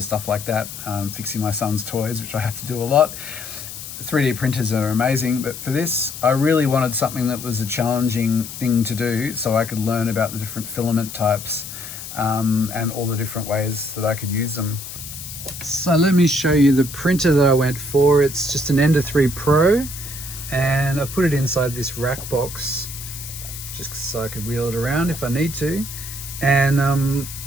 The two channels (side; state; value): left; noise; hiss, 11 dB below the sound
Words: stuff like that, fixing my son's toys, which I have to do a lot. 3D printers are amazing, but for this, I really wanted something that was a challenging thing to do so I could learn about the different filament types and all the different ways that I could use them. So let me show you the printer that I went for. It's just an Ender 3 Pro, and I've put it inside this rack box just so I could wheel it around if I need to. And